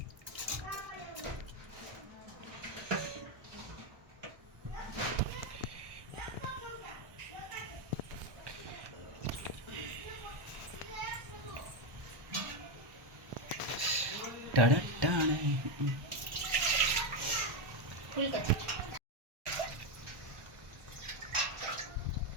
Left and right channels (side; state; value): left; late; 1.2 ms